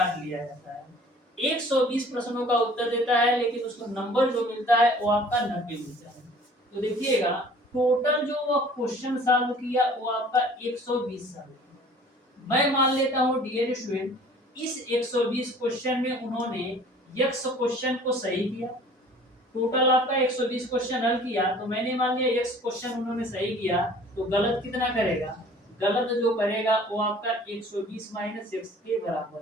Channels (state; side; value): normal; both; correlation 0.50